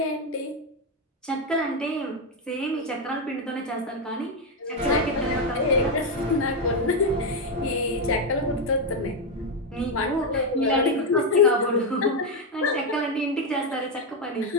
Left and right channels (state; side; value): normal; both; correlation 0.05